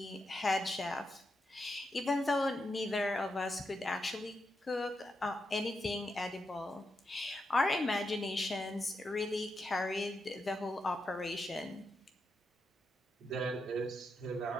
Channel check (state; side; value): normal; both; correlation 0.85